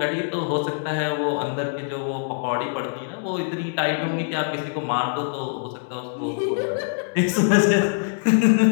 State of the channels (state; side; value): silent; right; 63 dB below the other